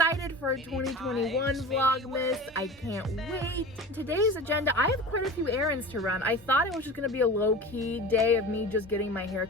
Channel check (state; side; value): normal; both; correlation 0.34